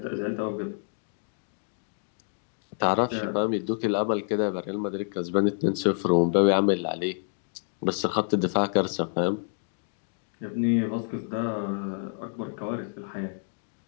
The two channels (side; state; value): right; silent; digital silence